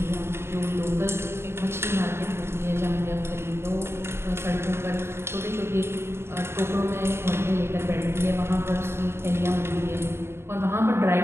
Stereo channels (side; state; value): left; late; 0.12 ms